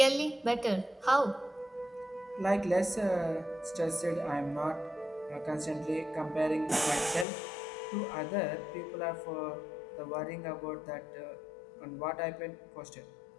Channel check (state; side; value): drops out; right; at 7.2 s